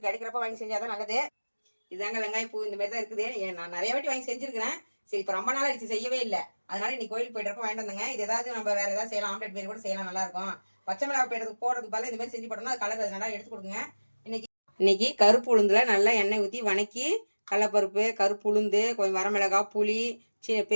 கிடைக்கிறப்ப வாங்கி செஞ்சாதான் நல்லது. இதாங்க வெங்காய பூ இந்த மாதிரி தான் இருக்குது. நான் நிறைய வாட்டி வாங்கி செஞ்சிருக்கிறேன். சரி இப்போ ரொம்ப நாள் ஆயிடுச்சு செய்யவே இல்லை. அதனால இன்னைக்கு கோயிலுக்கு போயிட்டு வாங்கிட்டு வந்தேங்க. இது ஏதாவது நம்ம வேற ஏதாவது செய்யலாம், ஆம்லெட் மாரி கூட செய்யலாம், நல்லா இருக்கும். பச்சை மிளகாய் போடுறதுக்கு பதிலாக இந்த மாதிரி செஞ்சு போட்டோம்னா அது கலர் நல்லா எடுத்து கொடுங்க. இன்னைக்கு கருப்பு உளுந்துல நல்லா எண்ணெய் ஊற்றி வணக்கி கடலப்பருப்பு, கருப்பு உளுந்து, கொஞ்சம் வரமிளகாய், புளி,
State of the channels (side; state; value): both; inverted; correlation -1.00